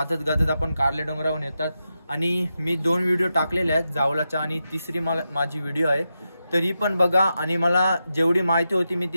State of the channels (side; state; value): both; inverted; correlation -0.88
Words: गाजत आपण कार्ले डोंगरावर नेतात. आणि मी 2 व्हिडिओ टाकलेले आहेत जावलाच्या आणि तिसरी माझी व्हिडिओ आहे, तर ही पण बघा. आणि मला जेवढी माहिती होती मी